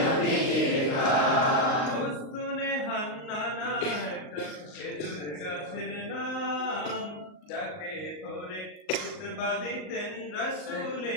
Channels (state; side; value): late; right; 38 ms